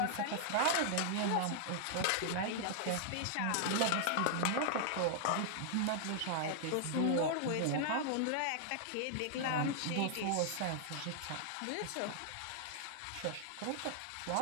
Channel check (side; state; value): both; different; correlation -0.01